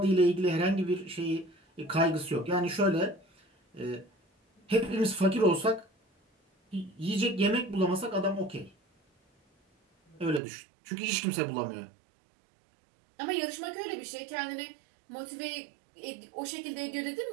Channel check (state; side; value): drops out; left; at 10.4 s